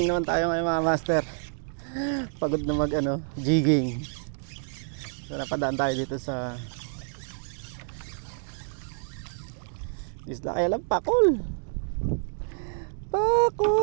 naman tayo ngayon mga master. Pagod na mag jigging. So napadaan tayo dito sa isla kaya lang pakol.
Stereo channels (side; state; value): left; silent; digital silence